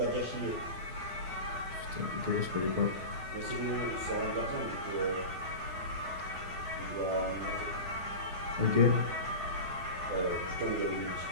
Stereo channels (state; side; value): late; left; 12 ms